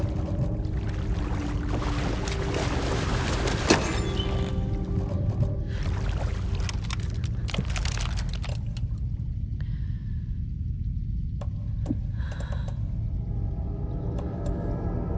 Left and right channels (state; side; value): identical; both; correlation 1.00